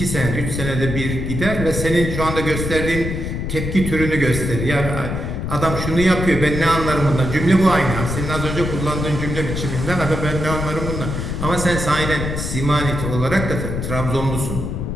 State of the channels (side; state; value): left; noise; rumble, 4 dB below the sound